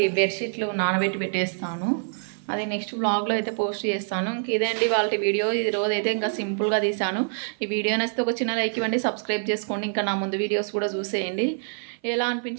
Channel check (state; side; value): silent; left; 55 dB below the other